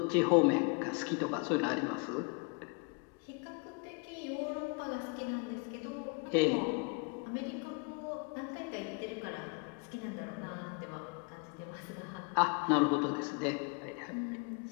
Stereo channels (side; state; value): right; quieter; 34.0 dB